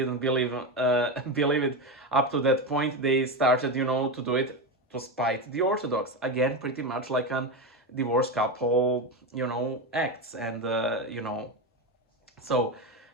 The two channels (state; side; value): normal; both; correlation 0.15